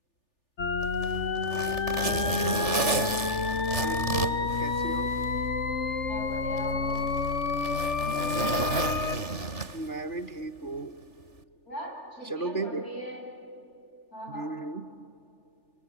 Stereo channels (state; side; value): late; right; 3.4 ms